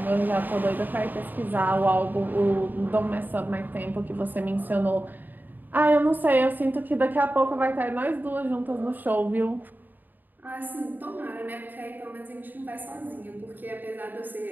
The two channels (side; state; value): left; late; 0.089 ms